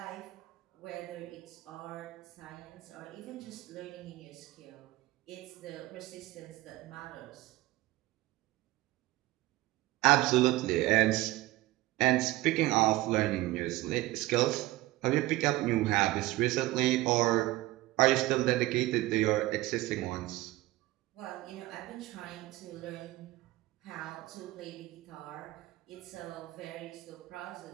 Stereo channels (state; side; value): quieter; left; 18.1 dB